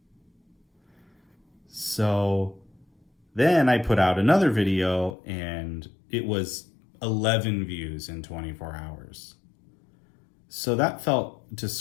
So then I put out another video and it was 11 views in 24 hours. So that felt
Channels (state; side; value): drops out; right; at 5.2 s